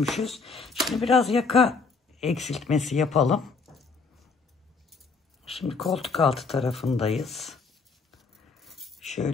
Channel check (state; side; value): quieter; right; 4.5 dB